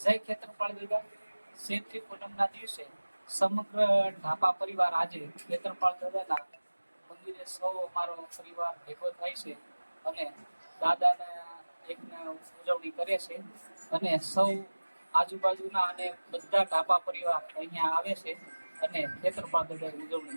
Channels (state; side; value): inverted; both; correlation -1.00